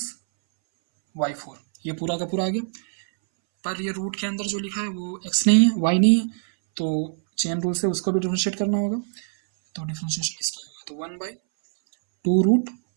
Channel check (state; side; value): silent; left; 63 dB below the other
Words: y⁴, ये पूरा का पूरा आ गया। पर ये रूट के अंदर जो लिखा है वो x नहीं है, y नहीं है, तो चेन रूल से उसको भी डिफ्रेंशिएट करना होगा, तो डिफ्रेंशिएशन इसका होगा, तो 1/2